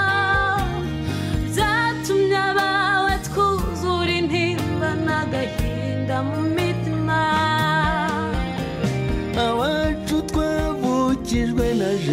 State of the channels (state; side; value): identical; both; correlation 1.00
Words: byatumye abawe twuzura intimba n'agahinda mu mitima. Abacu twavukijwe na